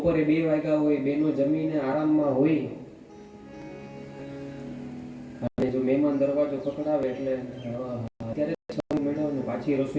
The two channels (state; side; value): identical; both; correlation 1.00